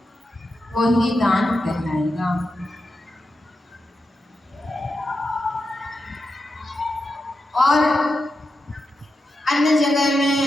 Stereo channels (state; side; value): normal; both; correlation 0.88